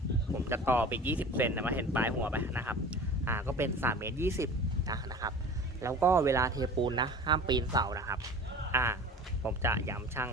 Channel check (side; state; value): both; normal; correlation 0.39